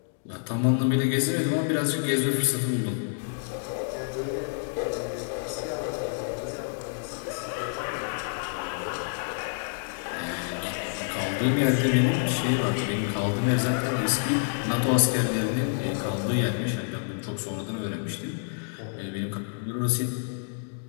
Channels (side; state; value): right; silent; digital silence